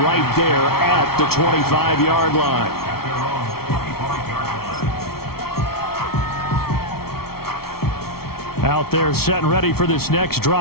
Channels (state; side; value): late; right; 0.94 ms